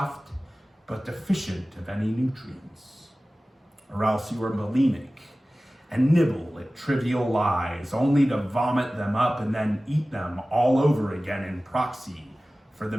but deficient of any nutrients. Or else you were bulimic and nibble at trivial lies, only to vomit them up and then eat them all over again in proxy for the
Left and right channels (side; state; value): both; normal; correlation 0.97